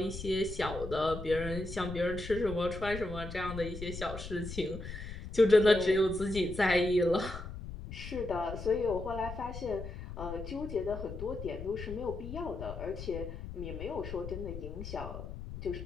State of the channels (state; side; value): noise; left; rumble, 9 dB below the sound